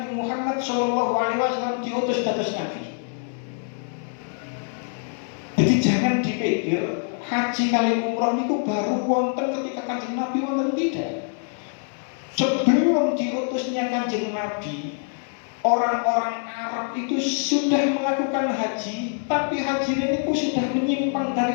Muhammad SAW diutus dados Nabi. Jadi jangan dipikir haji kali umroh itu baru wonten ketika Kanjeng Nabi wonten, tidak. Sebelum diutusnya Kanjeng Nabi, orang-orang Arab itu sudah melakukan haji, tapi haji ini sudah menyimpang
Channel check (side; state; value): right; silent; 59 dB below the other